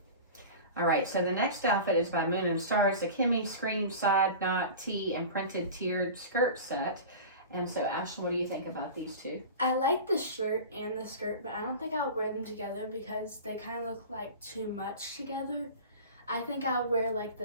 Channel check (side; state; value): both; inverted; correlation -0.34